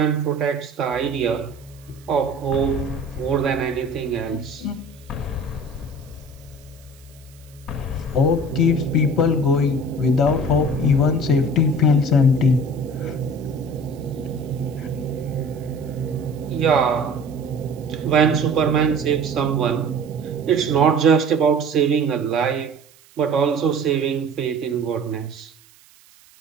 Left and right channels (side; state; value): right; noise; hiss, 28 dB below the sound